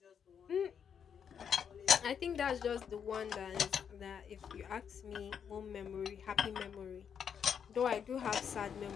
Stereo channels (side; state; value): right; quieter; 7.6 dB